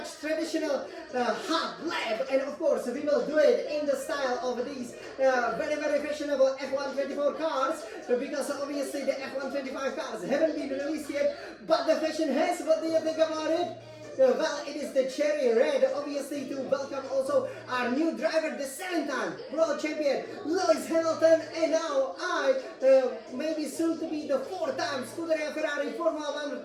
traditional hot lap. And of course, we will do it in the style of these very fashionable F124 cars, because obviously the F125 cars haven't been released yet, but the fashion has. What do you think about it? Well, it is the cherry red, obviously, to welcome also our new driver, the 7-time world champion, Lewis Hamilton, and now maybe soon to be the 4-time Scuderia Ferrari Formula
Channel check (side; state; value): both; identical; correlation 1.00